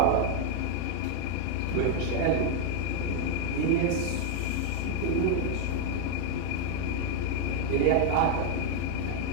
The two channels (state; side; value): different; both; correlation 0.00